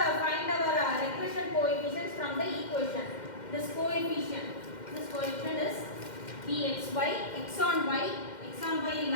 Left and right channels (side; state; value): right; late; 2.1 ms